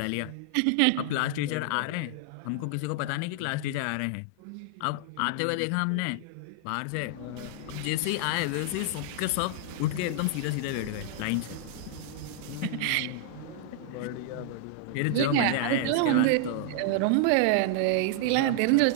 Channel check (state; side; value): different; both; correlation -0.01